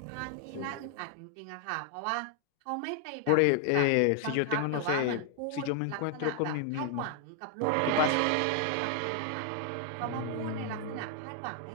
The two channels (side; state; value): both; different; correlation 0.00